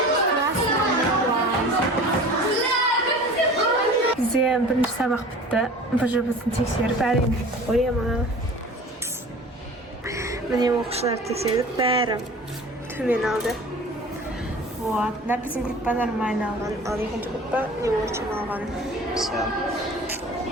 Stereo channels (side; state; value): both; normal; correlation 0.41